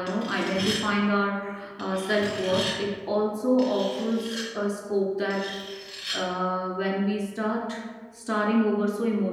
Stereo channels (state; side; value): identical; both; correlation 1.00